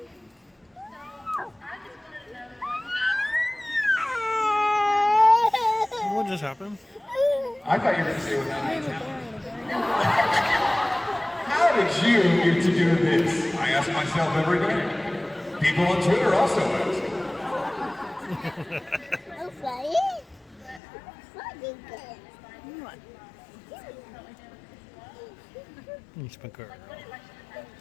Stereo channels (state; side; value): drops out; right; at 20.8 s